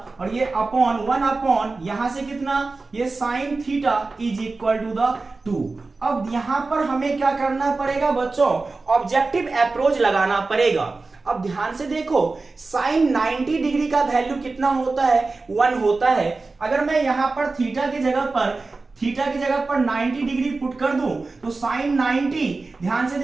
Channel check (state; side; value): quieter; left; 3.7 dB